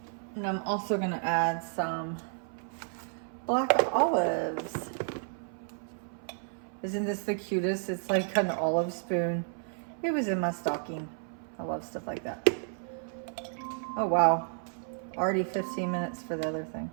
And I'm also gonna add some black olives. Isn't this the cutest? It's like an olive spoon. It was in my stocking. I love stuff like that. Oh wow, already 15 minutes for the other thing.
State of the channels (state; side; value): silent; left; 57 dB below the other